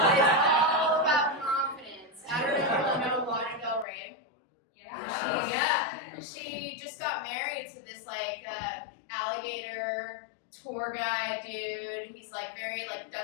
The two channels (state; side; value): drops out; right; at 3.9 s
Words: about confidence. I don't know if you know Lana Del Rey. She just got married to this like alligator tour guide dude. He's like very like